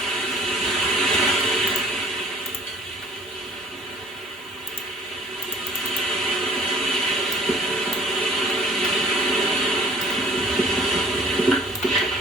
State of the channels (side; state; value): both; normal; correlation 0.53